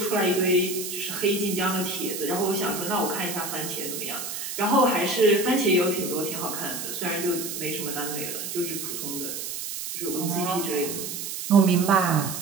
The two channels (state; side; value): noise; right; hiss, 6 dB below the sound